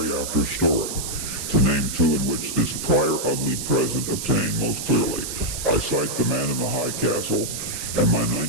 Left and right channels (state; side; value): noise; right; hiss, 6 dB below the sound